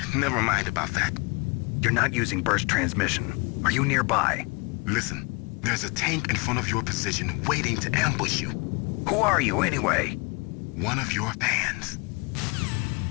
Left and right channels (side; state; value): right; quieter; 29.2 dB